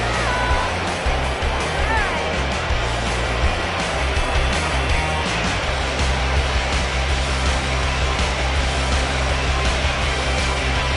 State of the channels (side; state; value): both; identical; correlation 1.00